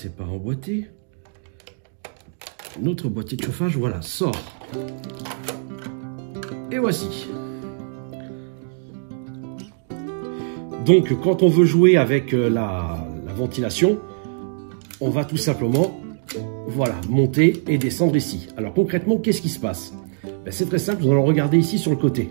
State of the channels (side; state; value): left; silent; digital silence